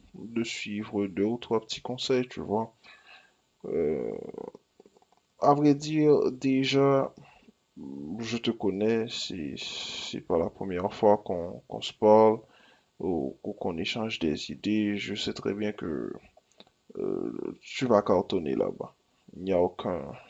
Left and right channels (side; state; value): both; identical; correlation 1.00